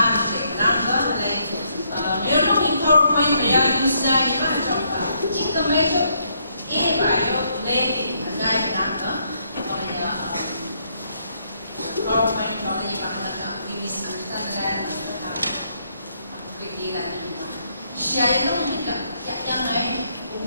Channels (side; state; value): both; inverted; correlation -0.73